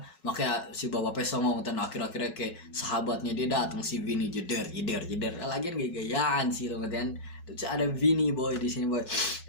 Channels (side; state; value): right; late; 5.4 ms